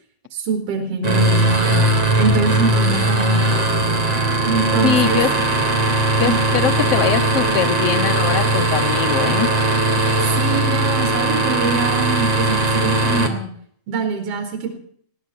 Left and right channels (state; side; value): late; left; 7.6 ms